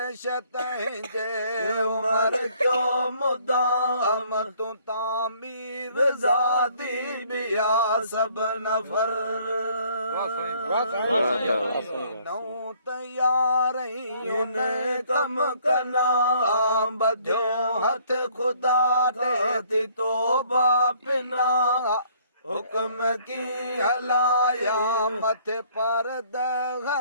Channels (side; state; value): both; inverted; correlation -0.61